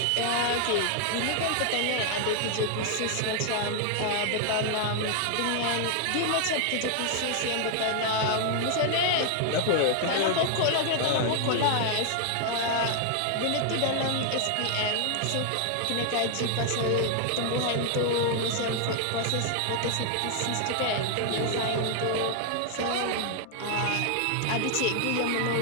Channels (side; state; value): both; different; correlation 0.00